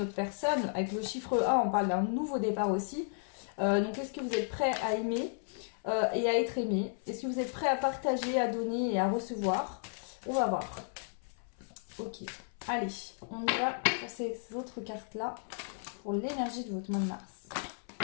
autre personne. Avec le chiffre 1, on parle d'un nouveau départ aussi. Donc est-ce que vous êtes prêt à aimer et à être aimé? Est-ce que vous êtes prêt à partager, à donner et à recevoir? On va voir. Ok, allez, on y va pour ces autres cartes-là pour l'énergie de votre mois de mars.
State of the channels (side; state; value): right; silent; 55 dB below the other